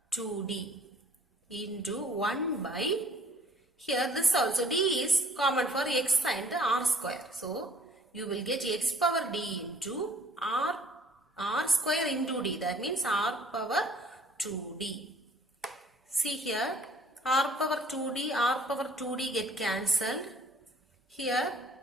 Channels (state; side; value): normal; both; correlation 0.56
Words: 2d into 1 by, here this also d is common for x and r square. So you will get x power d into r square into d, that means r power 2d. See here r power 2d get cancelled. Here